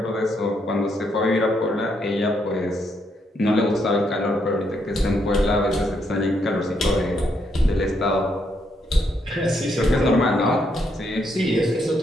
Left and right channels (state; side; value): normal; both; correlation 0.76